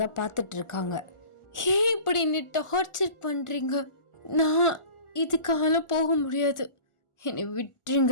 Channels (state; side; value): late; right; 1.4 ms